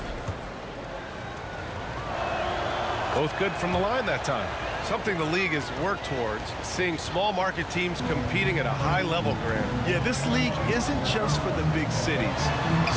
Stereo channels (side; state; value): both; identical; correlation 1.00